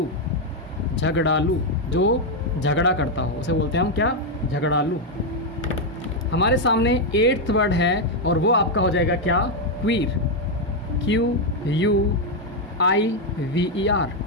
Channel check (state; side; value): normal; both; correlation 0.02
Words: झगड़ालू, जो झगड़ा करता हो उसे बोलते हैं हम क्या? झगड़ालू। हमारे सामने 8th वर्ड है और वो आपका हो जाएगा क्या? Queer. QUIVER,